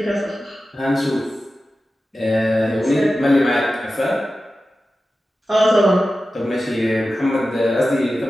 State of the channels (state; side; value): normal; both; correlation 0.94